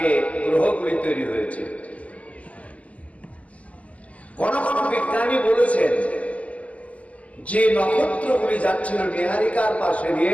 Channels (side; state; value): right; late; 0.065 ms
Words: গ্রহগুলি তৈরি হয়েছে। কোন কোন বিজ্ঞানী বলেছেন যে নক্ষত্রগুলি যাচ্ছিল নীহারিকার পাশে